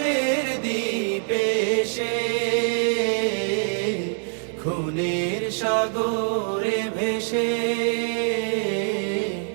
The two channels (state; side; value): silent; left; 62 dB below the other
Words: দ্বীপে এসে। খুনের সাগরে ভেসে,